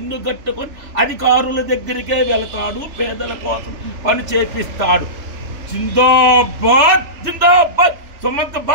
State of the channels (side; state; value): left; late; 3.4 ms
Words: కట్టుకొని అధికారుల దగ్గరికే వెళతాడు. పేదల కోసం పని చేపిస్తాడు. జిందాబాద్ జిందాబాద్ సుమంత్